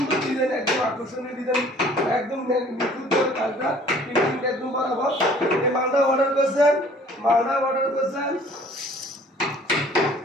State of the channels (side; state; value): both; normal; correlation 0.53